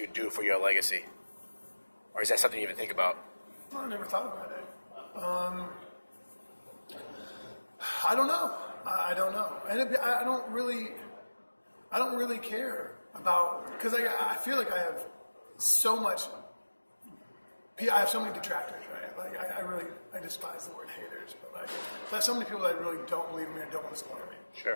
do for your legacy? Or is that something you even think about? Well, I never thought about it. I don't know. I don't know, and I don't really care about, because I feel like I have so much. I have so many detractors, right? Like I despise the word haters, but like there's so many people that really don't believe in me and don't want to support me.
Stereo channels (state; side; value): inverted; both; correlation -1.00